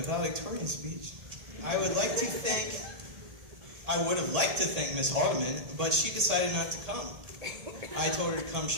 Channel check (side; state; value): left; late; 1.8 ms